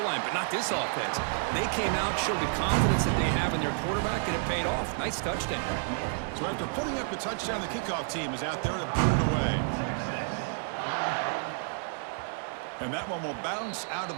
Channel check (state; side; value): silent; left; digital silence